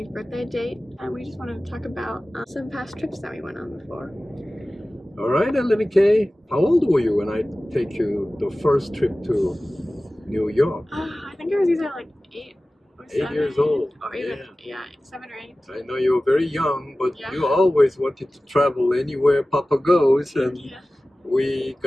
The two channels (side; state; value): both; normal; correlation 0.96